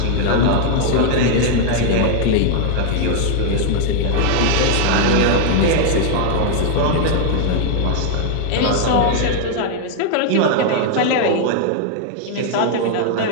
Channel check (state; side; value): different; both; correlation -0.01